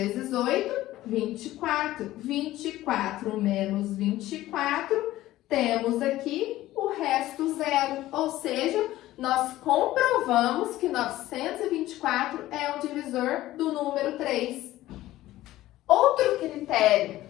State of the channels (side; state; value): right; quieter; 15.6 dB